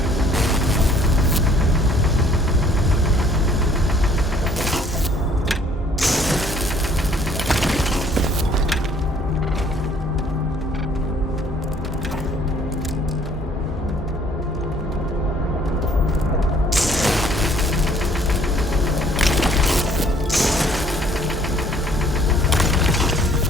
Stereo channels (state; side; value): normal; both; correlation 0.59